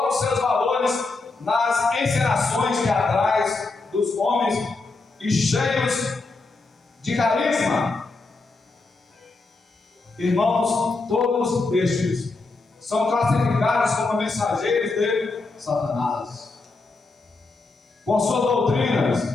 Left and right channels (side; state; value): right; quieter; 3.6 dB